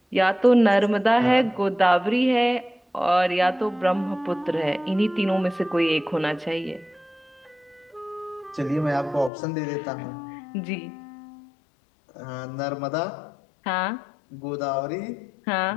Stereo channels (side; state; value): right; drops out; at 9.3 s